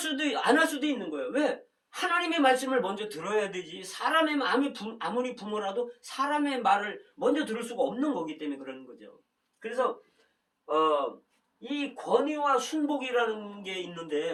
있는 거예요. 왜? 하나님의 말씀을 먼저 들어야 되지. 사람의 마음이 아무리 부모라도 사람의 말을 먼저 들을 수가 없는 거기 때문에 그러는 거죠. 그래서 이 권위와 순복이라는 게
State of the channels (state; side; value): identical; both; correlation 1.00